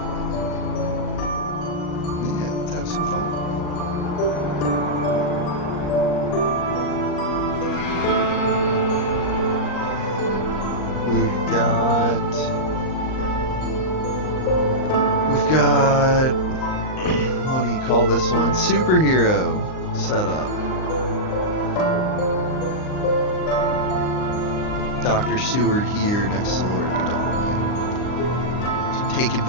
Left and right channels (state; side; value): late; right; 38 ms